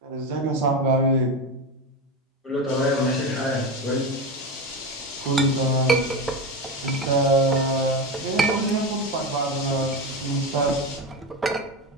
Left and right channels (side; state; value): both; normal; correlation 0.19